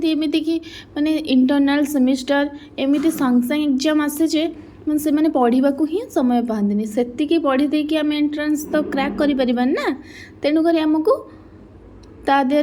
कि माने इंटरनल सेमिस्टर एमती संग संग एग्जाम आसे जे मैं से मैंने पढ़ा ही समय पाती से पढ़ी देकी आम एंट्रांस तो क्रैक कर ना। तेणुक आमको ता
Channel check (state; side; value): identical; both; correlation 1.00